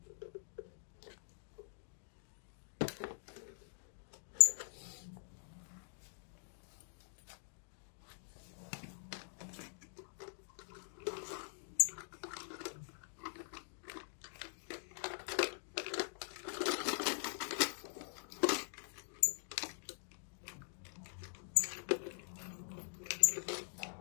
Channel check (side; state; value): right; silent; digital silence